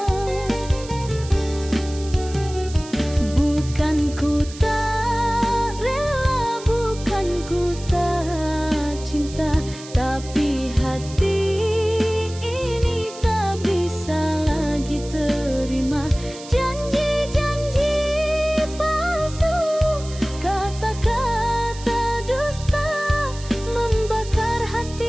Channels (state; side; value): noise; right; hiss, 16 dB below the sound